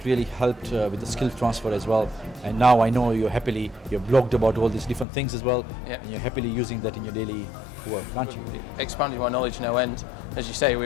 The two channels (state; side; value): drops out; right; at 5.1 s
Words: really helped with the skill transfer as well. And now I know you're blogged about all these different things as well, and you're happily using that in your daily work, aren't you? Expanding my knowledge no end. As you say,